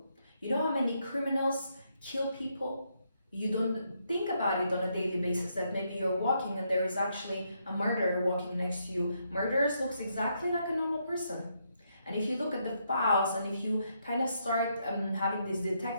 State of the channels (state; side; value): inverted; both; correlation -0.77